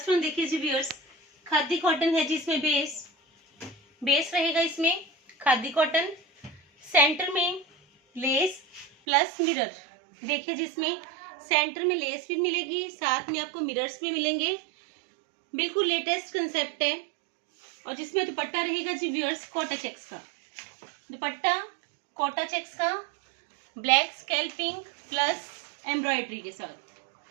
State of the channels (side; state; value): left; drops out; at 8.9 s